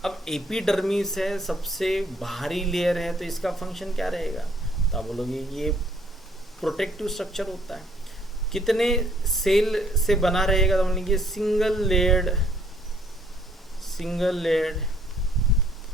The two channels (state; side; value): normal; both; correlation 0.63